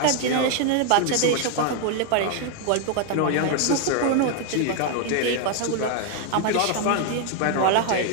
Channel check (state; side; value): different; both; correlation 0.00